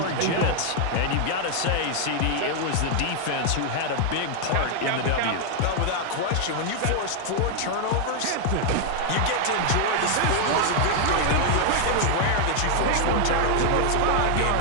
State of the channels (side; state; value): both; different; correlation 0.00